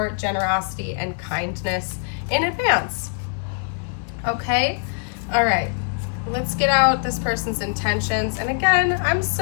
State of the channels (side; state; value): right; silent; digital silence